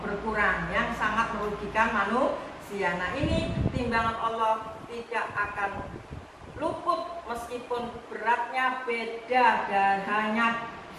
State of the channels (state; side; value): identical; both; correlation 1.00